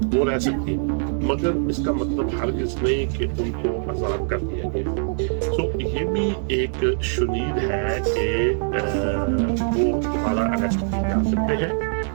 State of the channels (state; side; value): silent; left; digital silence